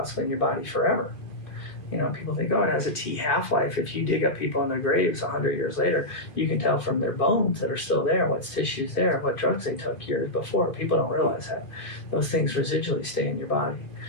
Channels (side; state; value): right; late; 2.4 ms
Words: in your body forever. People think, oh, it has a T half-life. If you dig up people in their graves 100 years later, you can tell from their bones that are still there, what's tissues there, what drugs they took years before. People don't realize that. Those things residually stay in your body.